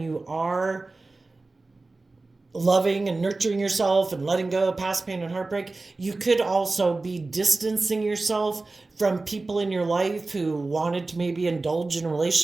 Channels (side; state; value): left; quieter; 3.4 dB